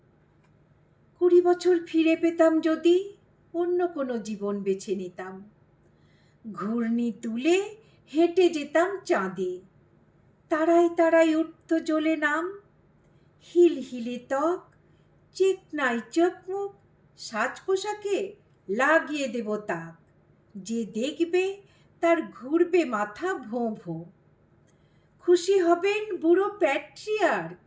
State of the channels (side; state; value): both; identical; correlation 1.00